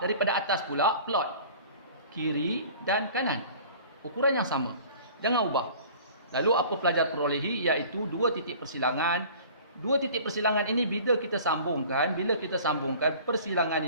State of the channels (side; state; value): both; inverted; correlation -0.46